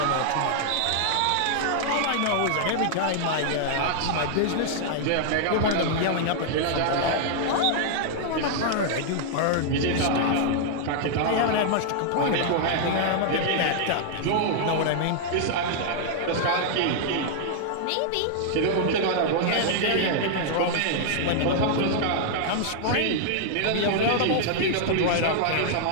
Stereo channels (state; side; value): different; both; correlation -0.01